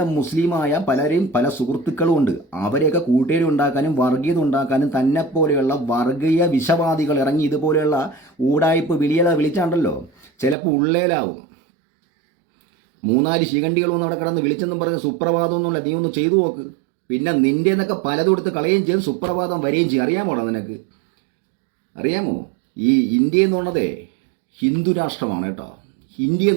മുസ്ലിമായ പല സുഹൃത്തുക്കളും ഉണ്ട്. അവരെയൊക്കെ കൂട്ടുകാരി ഉണ്ടാക്കാനും വർഗീയത ഉണ്ടാക്കാനും തന്നെപ്പോലെയുള്ള വർഗീയ വിഷവാദികൾ ഇറങ്ങി ഇതുപോലെയുള്ള ഊടായ്പ് വിളിച്ചാണ്ടല്ലോ ചിലപ്പോൾ ഉള്ളേലാവും. 3-4 ശിഖണ്ഡികൾ ഒന്നും അവിടെ കിടന്ന് വിളിച്ചെന്നും പറഞ്ഞ് സുപ്രഭാതം എന്നുള്ള നീ ഒന്ന് ചെയ്തു നോക്ക്. പിന്നെ നിൻ്റെ എന്നൊക്കെ പലതും എടുത്ത് കളയുകയും ചെയ്യും, സുപ്രഭാതം വരികയും ചെയ്യും. അറിയാമോടാ നിനക്ക്? അറിയാമോ? ഈ ഇന്ത്യ എന്നുള്ളതേ ഹിന്ദു രാഷ്ട്രമാണ് കേട്ടോ. ഇന്ത്യ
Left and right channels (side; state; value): left; drops out; at 10.6 s